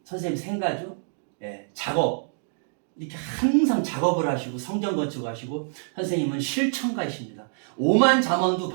선생님 생가죠. 작업. 이렇게 항상 작업을 하시고 성전 건축하시고 선생님은 실천가이십니다. 오만 잠언도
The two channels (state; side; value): silent; left; digital silence